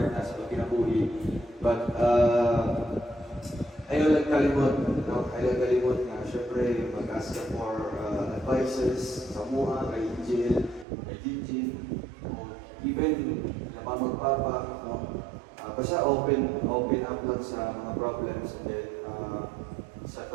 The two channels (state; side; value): drops out; left; at 10.9 s